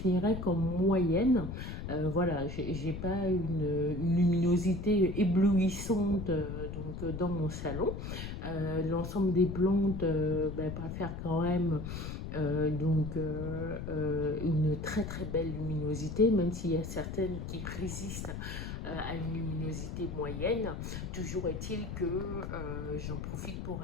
comme moyenne. Voilà, j'ai pas une luminosité éblouissante dans mon salon. L'ensemble des plantes préfèrent quand même une très très belle luminosité, même s'il y a certaines qui résistent à une luminosité moyenne. Toujours est-il que j'en profite pour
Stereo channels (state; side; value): noise; left; rumble, 6 dB below the sound